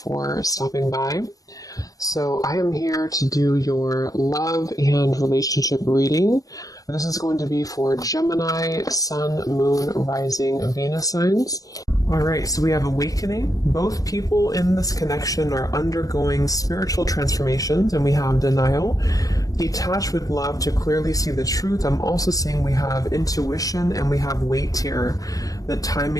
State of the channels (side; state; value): right; late; 0.17 ms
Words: stopping by. So I am here to do your love and relationship reading. This is going to be for Gemini, Sun, Moon, Rising, Venus signs. All right, so we have awakening. Both people in this connection are undergoing spiritual transformations, and we have denial. Detached with love to clearly see the truth. I'm also seeing we have intuition and we have weight here. The